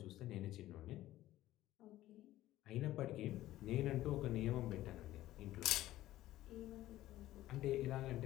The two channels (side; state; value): right; quieter; 15.0 dB